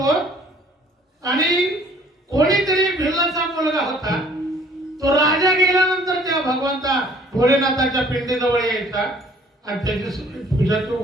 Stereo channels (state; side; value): normal; both; correlation 0.56